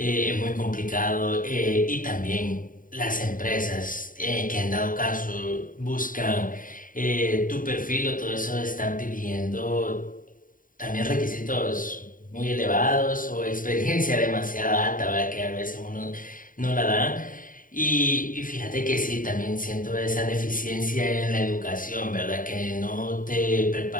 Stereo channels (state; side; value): late; right; 0.39 ms